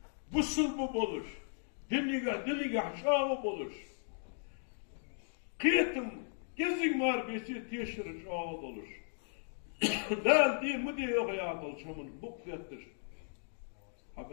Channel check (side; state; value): right; silent; digital silence